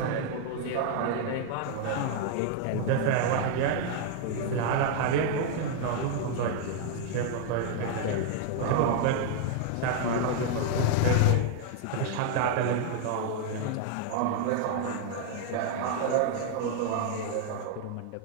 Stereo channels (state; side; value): different; both; correlation 0.00